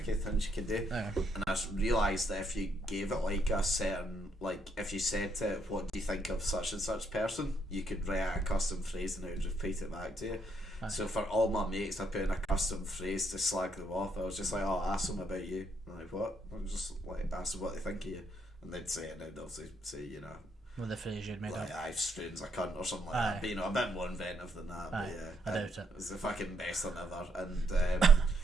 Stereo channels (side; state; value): both; normal; correlation 0.74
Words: things you can do, and I realised that if you gave it like a certain, like if you said to it, what do you think of such and such person, you could write out a custom phrase and it would repeat it back to you. So for all my mates, I put in a custom phrase to slag them off. I was just like, oh, ask them about you. I'm like, what? I'm just like, ask them what they think of you, and they'd say it, and they'd obviously say, with the phrase you'd made like, up. I've strange a cunt or something like that. But, a bit more inventive than that. But yeah, I doubt it. It's the fucking best thing ever. And